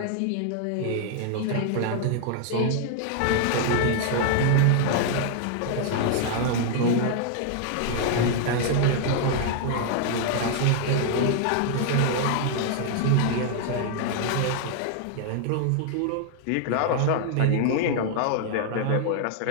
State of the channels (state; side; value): different; both; correlation 0.00